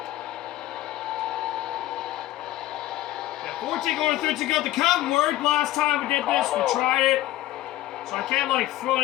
Yeah, 14 going to 13 go. The cut worked last time we did this. We tried it. So I can't like throw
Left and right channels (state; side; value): quieter; right; 15.5 dB